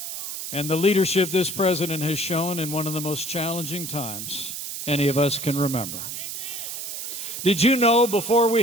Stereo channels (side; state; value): right; noise; hiss, 6 dB below the sound